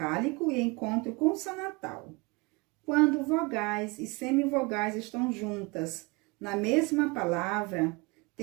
e encontro consonantal. Quando vogais e semivogais estão juntas na mesma palavra,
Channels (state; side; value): quieter; left; 26.4 dB